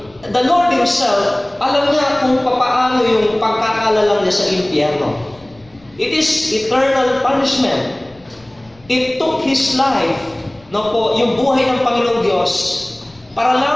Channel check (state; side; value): noise; left; rumble, 29 dB below the sound